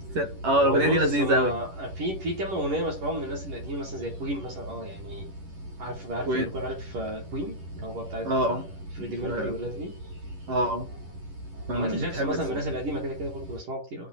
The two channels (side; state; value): left; late; 11 ms